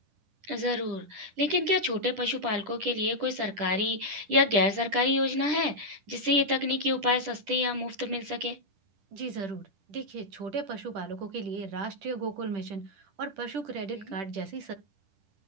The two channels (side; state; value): left; late; 10 ms